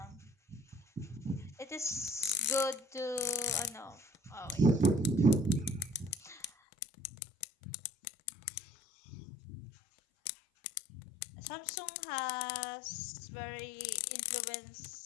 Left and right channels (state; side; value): drops out; right; at 6.5 s